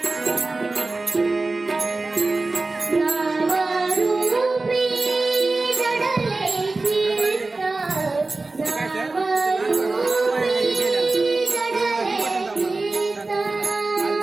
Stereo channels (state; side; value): quieter; left; 3.4 dB